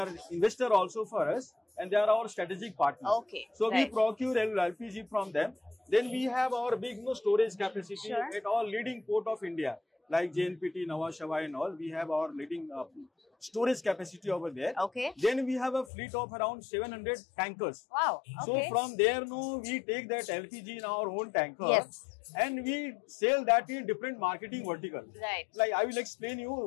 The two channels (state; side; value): drops out; right; at 15.9 s